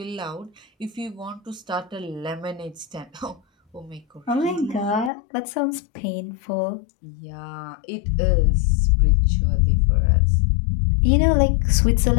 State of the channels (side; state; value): right; drops out; at 5.1 s